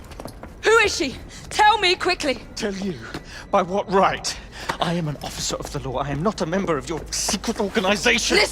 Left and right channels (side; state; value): both; identical; correlation 1.00